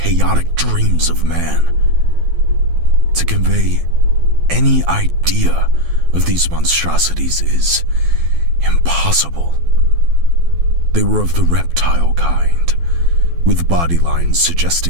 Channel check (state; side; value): late; left; 12 ms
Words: dreams of man. To convey any idea of these monstrosities is impossible. They were of the reptile kind, with body lines